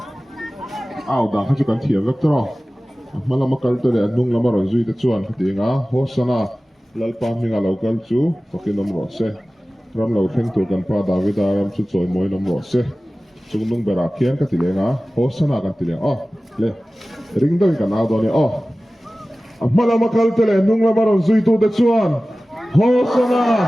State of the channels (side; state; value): both; normal; correlation 0.97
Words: out da kha chu kan thiam vek tro mala makal to le nung la maro zui te chuan kha ti nga hosana lalpa minga local chu pakinom ro se ram lo theng tu kan pa David ram chu choi moi nom ro se chung nung bera khian ka ti le nga hosana kan ti le le ring do kan out do ni mala makal to le nung la maro zui tu te chuan hosana